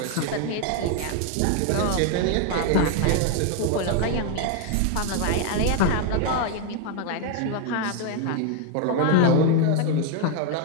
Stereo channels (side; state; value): both; different; correlation 0.01